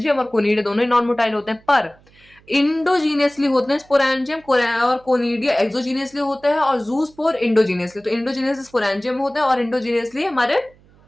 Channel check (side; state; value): right; noise; hum, 29 dB below the sound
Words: और कोनिडिया दोनों ही नॉन मोटाइल होते हैं, पर इंडोजीनियसली होते हैं स्पोरेंजियम और कोनिडिया एक्सोजीनियसली होते हैं, और ज़ूस्पोर इंडोजीनियसली। तो इंडोजीनियसली स्पोरेंजियम होते हैं और इंडोजीनियसली हमारे